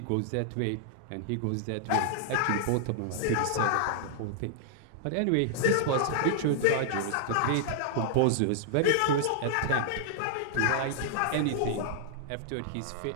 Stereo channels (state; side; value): different; both; correlation -0.01